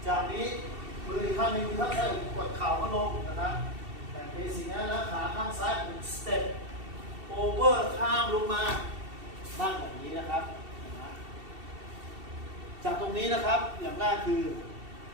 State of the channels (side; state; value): left; late; 2.7 ms